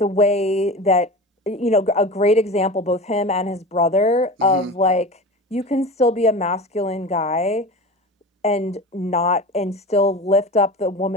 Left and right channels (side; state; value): both; normal; correlation 0.31